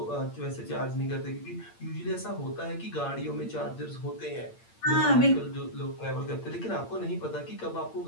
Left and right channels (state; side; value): late; right; 8.8 ms